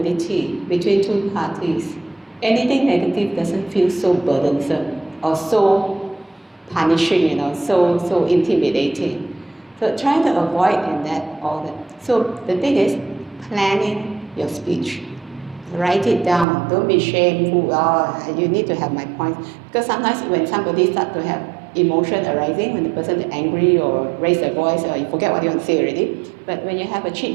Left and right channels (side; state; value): left; drops out; at 16.4 s